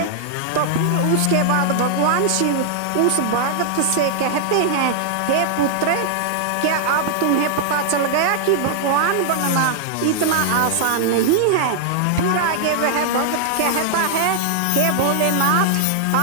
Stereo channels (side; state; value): both; different; correlation -0.01